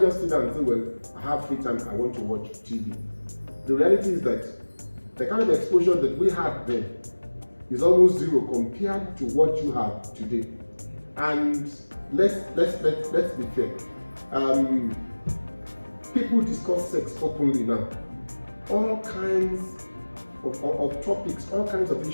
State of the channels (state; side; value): inverted; both; correlation -1.00